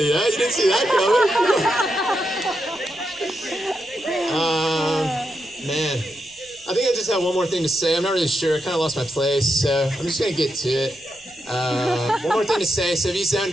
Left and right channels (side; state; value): left; noise; rumble, 30 dB below the sound